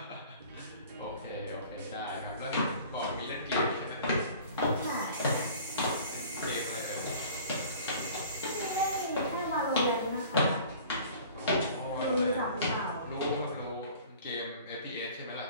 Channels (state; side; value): inverted; both; correlation -0.46